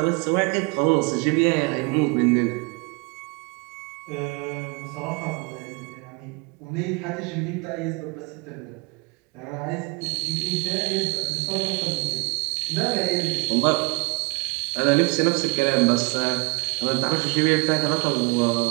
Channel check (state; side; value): quieter; left; 29.5 dB